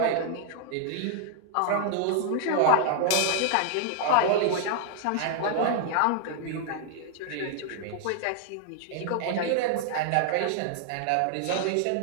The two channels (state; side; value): different; both; correlation 0.00